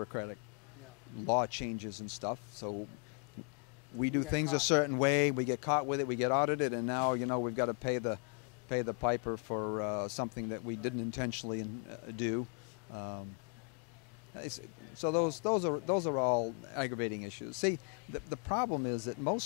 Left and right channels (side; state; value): right; quieter; 38.4 dB